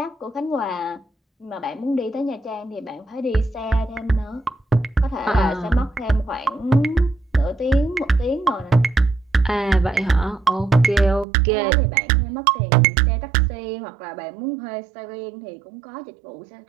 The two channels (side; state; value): left; drops out; at 11.2 s